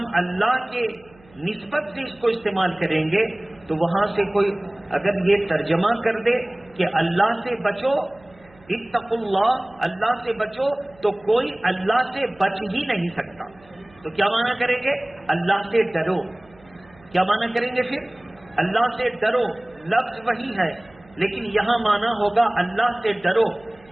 اللہ کے نسبت سے اس کو استعمال کریں گے تو وہاں سے کوئی اگر یہ ترجمہ کر دے کہ اللہ سے بچو، اتقوا اللہ، اللہ سے بچو، تو کوئی اللہ سے بچ ہی نہیں سکتا۔ تو کیا معنی کریں گے؟ اللہ سے ڈرو۔ کیا معنی کریں گے پھر؟ اللہ سے ڈرو، لفظ وہی ہے لیکن یہاں معنی ہوگا اللہ سے ڈرو۔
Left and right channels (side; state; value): right; noise; hum, 27 dB below the sound